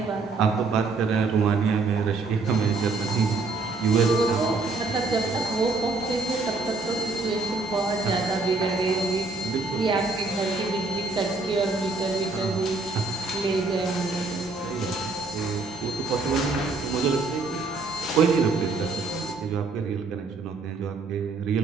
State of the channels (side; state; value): left; quieter; 3.7 dB